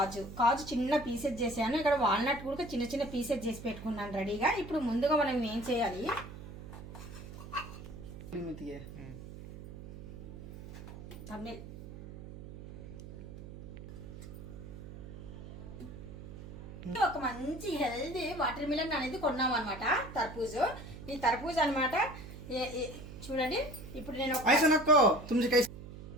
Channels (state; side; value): noise; right; hum, 13 dB below the sound